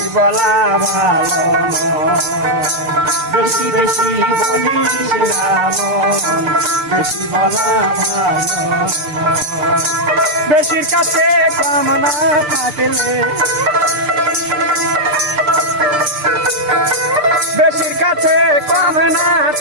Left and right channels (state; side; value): late; left; 6.7 ms